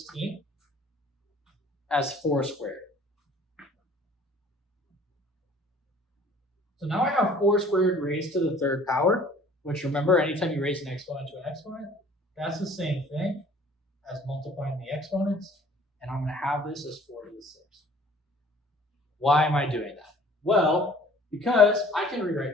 as 4 squared. So now I have 4 squared raised to the third power, which remember, anytime you raise an exponent to an exponent, that's the same thing as multiplying the exponents. And I'm going to have this as 4 to the 6th. Why am I doing that? Well, because I can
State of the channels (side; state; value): both; normal; correlation 0.52